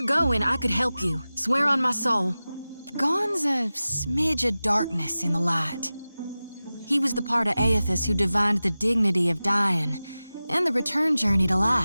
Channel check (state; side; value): inverted; both; correlation -0.96